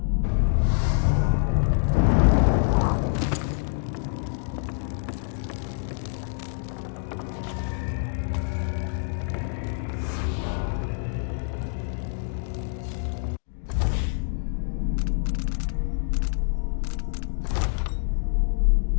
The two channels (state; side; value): silent; right; digital silence